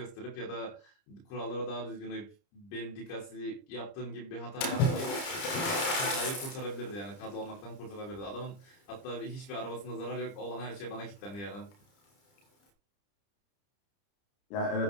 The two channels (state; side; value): late; right; 30 ms